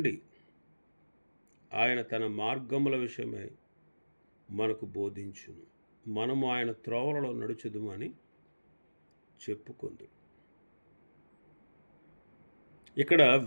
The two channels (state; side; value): inverted; both; correlation -1.00